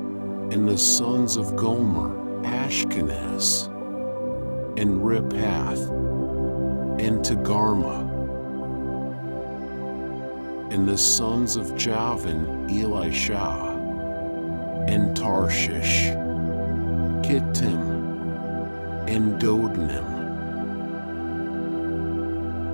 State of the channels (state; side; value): inverted; both; correlation -1.00